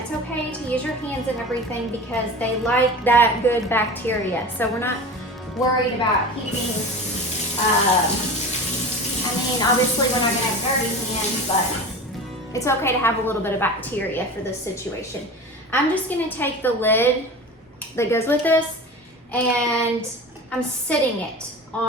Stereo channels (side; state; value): both; normal; correlation 0.33